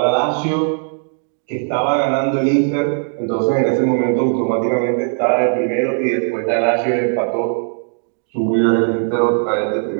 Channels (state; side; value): silent; left; 58 dB below the other